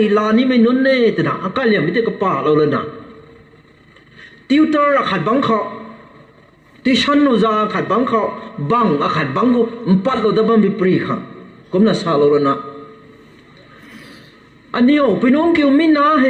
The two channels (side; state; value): both; identical; correlation 1.00